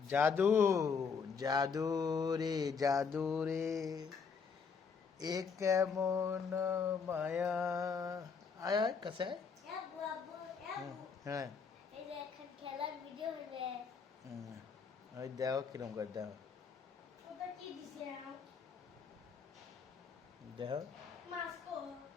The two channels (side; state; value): right; quieter; 5.7 dB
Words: জাদু রে জাদু রে এ কেমন মায়া আয় আয় কাছে হ্যাঁ ওই দেখো কিরম করে দেখো দেখো